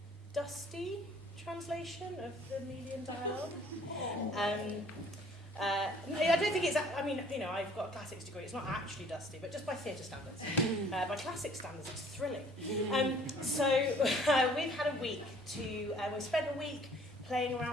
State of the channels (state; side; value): normal; both; correlation 0.56